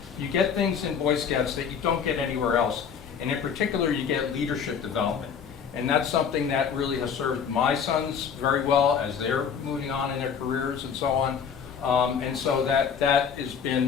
You get things in Boy Scouts that you don't get anywhere else. And in particular, you get leadership development. And that's something that really has served my sons very well as they're moving on in their careers and so on. And so that has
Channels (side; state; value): right; quieter; 7.1 dB